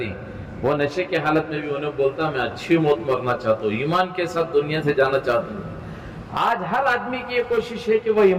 وہ نشے کی حالت میں بھی انہیں بولتا میں اچھی موت مرنا چاہتا ہوں، ایمان کے ساتھ دنیا سے جانا چاہتا ہوں. آج ہر آدمی کی یہ کوشش ہے کہ وہ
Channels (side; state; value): both; identical; correlation 1.00